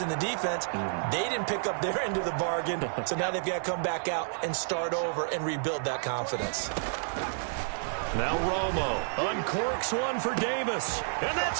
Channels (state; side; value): silent; left; 58 dB below the other